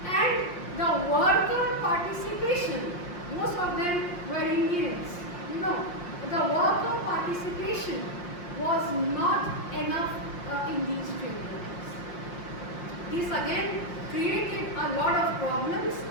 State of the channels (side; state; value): right; late; 5.6 ms